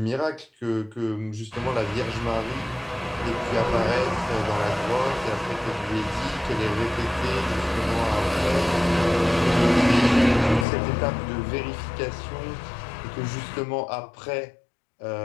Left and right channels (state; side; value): drops out; right; at 10.7 s